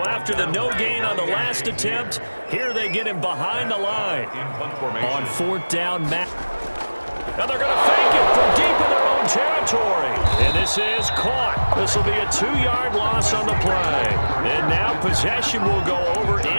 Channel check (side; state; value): both; inverted; correlation -1.00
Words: after the no gain on the last attempt, here they get him behind the line. On 4th down, Matt. Now they're going to fake it from deep in their own territory. And this is caught. This will be a 2-yard loss on the play. And now possession will go over